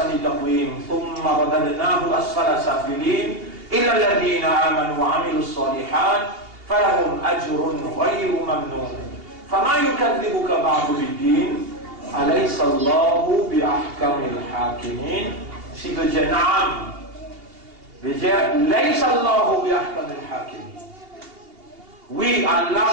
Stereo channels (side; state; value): left; late; 2.8 ms